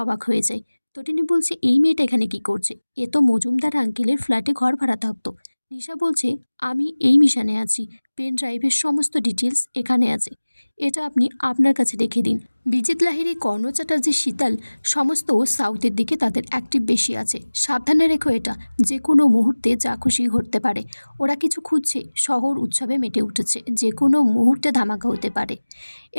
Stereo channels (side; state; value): both; inverted; correlation -1.00